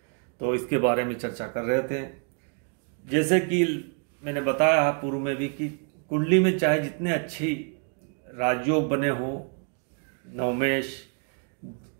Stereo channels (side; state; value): left; quieter; 38.5 dB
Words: तो इसके बारे में चर्चा कर रहे थे। जैसे कि मैंने बताया पूर्व में भी कि कुंडली में चाहे जितने अच्छी राजयोग बने हो, नवमेश